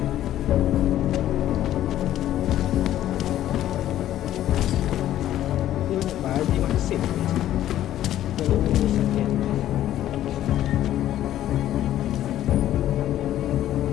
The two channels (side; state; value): right; quieter; 12.6 dB